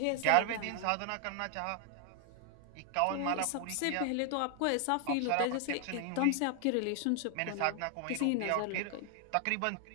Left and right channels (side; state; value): both; different; correlation 0.00